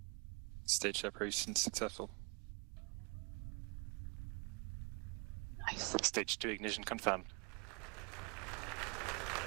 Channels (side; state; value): left; quieter; 31.9 dB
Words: Stage separation successful. Nice. Stage 2 ignition confirmed.